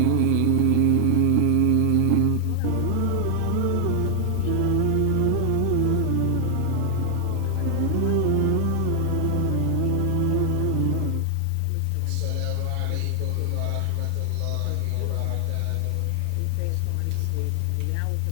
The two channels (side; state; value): both; different; correlation 0.00